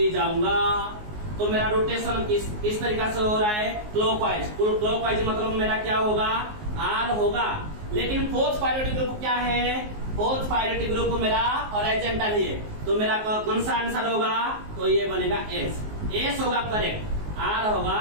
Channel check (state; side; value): late; left; 19 ms